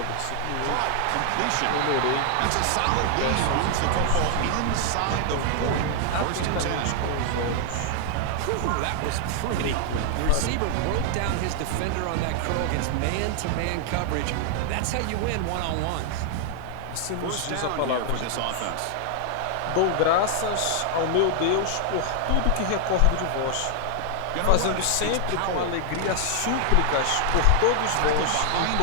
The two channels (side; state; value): both; different; correlation 0.00